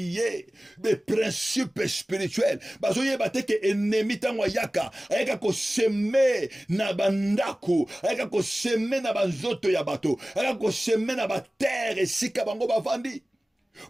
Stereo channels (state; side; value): normal; both; correlation 0.97